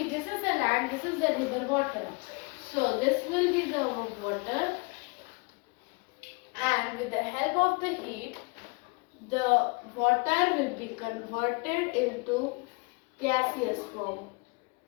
and this is the river water. So this will be the water, and with the help of the heat, the water will be converted into gaseous form,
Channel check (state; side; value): quieter; right; 31.7 dB